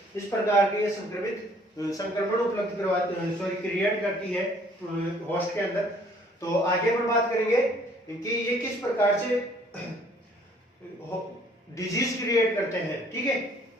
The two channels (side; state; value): both; normal; correlation 0.59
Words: इस प्रकार के ये संक्रमण उपलब्ध क्रिएट करती है होस्ट के अंदर। तो आगे हम बात करेंगे कि ये किस प्रकार से डिजीज क्रिएट करते हैं। ठीक है,